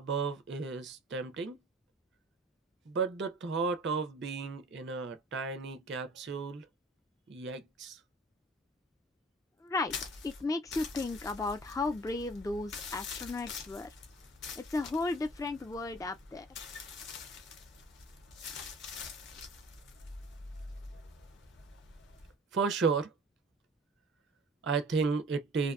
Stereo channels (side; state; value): both; normal; correlation 0.47